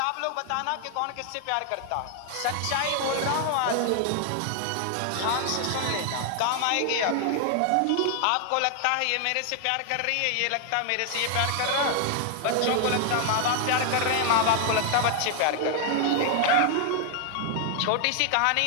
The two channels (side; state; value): both; different; correlation 0.00